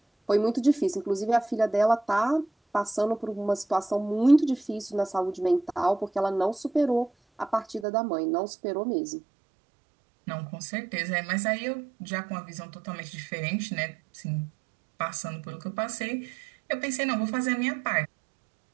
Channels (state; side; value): drops out; left; at 7.9 s